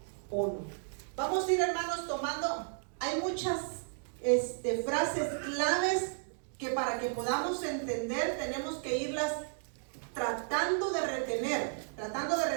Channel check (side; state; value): left; silent; digital silence